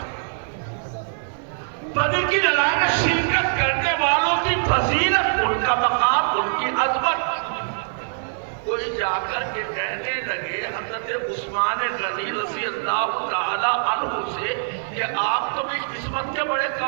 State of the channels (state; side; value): silent; left; 63 dB below the other